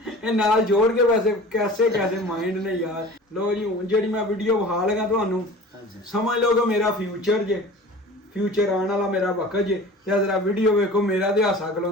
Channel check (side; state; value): both; normal; correlation 0.40